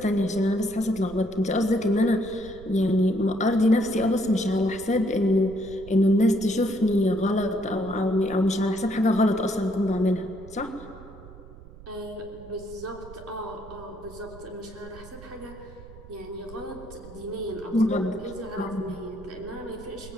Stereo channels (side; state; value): right; noise; rumble, 18 dB below the sound